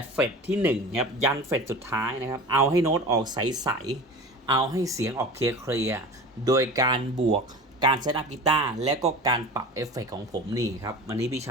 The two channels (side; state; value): both; normal; correlation 0.35